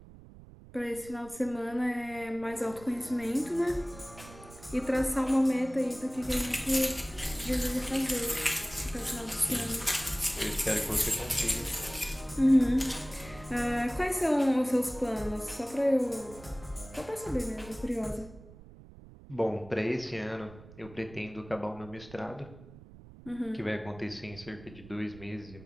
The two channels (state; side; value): noise; right; rumble, 19 dB below the sound